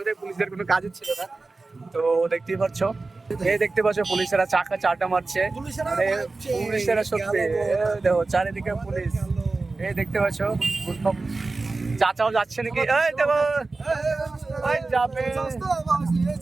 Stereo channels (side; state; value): left; quieter; 3.6 dB